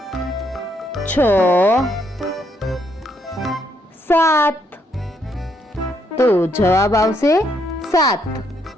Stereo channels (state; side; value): normal; both; correlation 0.74